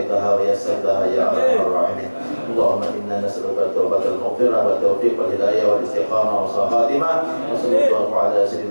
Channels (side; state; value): both; inverted; correlation -1.00